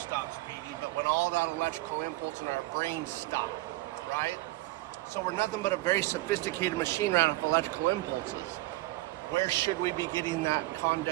beating, but when all that electrical impulse in our brain stop, right? So we're nothing but a very sophisticated machine right off electrical impulses. Where should we be getting that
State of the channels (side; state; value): left; quieter; 19.1 dB